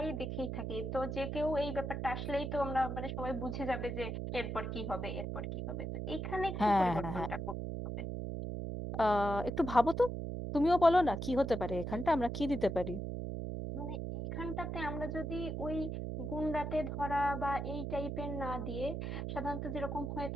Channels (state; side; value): noise; right; hum, 3 dB below the sound